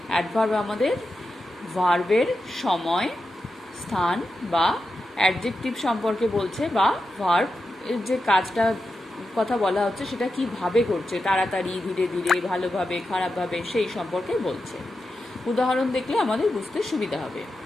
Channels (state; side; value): normal; both; correlation 0.89